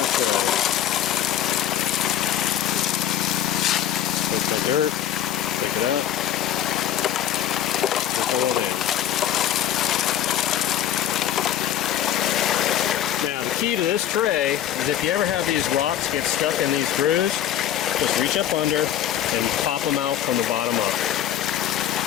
tray. Take the dirt, pick it up, trickle it in. Key to this tray is if you ever have these rocks get stuck in these grooves, just reach up under and pop them out from the bottom up.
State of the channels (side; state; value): right; quieter; 10.9 dB